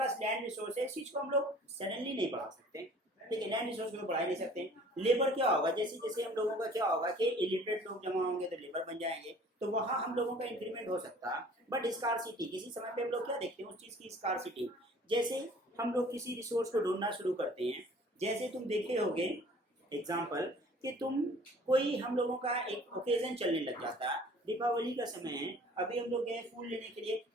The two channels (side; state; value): both; normal; correlation 0.50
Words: लैंड रिसोर्स है इस चीज को हम लोग सडनली नहीं बढ़ा सकते ठीक है लैंड रिसोर्स को बढ़ा नहीं सकते लेबर क्या होगा जैसे जैसे हम लोगों का क्या होगा कि इलिटरेट लोग जमा होंगे तो लेबर बन जाएंगे तो वहाँ हम लोगों का इंक्रीमेंट हो सकता है बट स्कारसिटी किसी समय पे हम लोग क्या देखते हैं उस चीज की स्कारसिटी जैसे हम लोग किसी रिसोर्स को ढूंढना शुरू करते हैं जैसे तुम देखे होगे एग्जाम्पल कि तुम कोई हम लोगों का एक ओकेजन चलने लग जाता है दीपावली का समय है अभी हम लोग गए फूल लेने के लिए